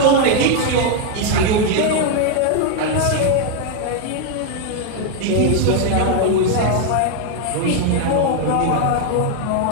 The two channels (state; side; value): different; both; correlation 0.00